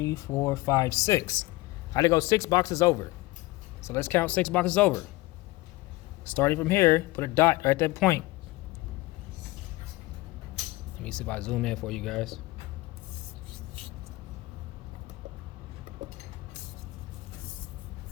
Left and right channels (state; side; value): quieter; right; 20.4 dB